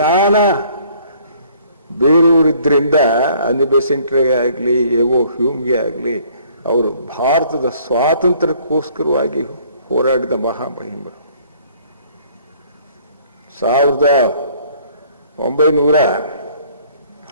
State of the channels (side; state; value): both; inverted; correlation -0.59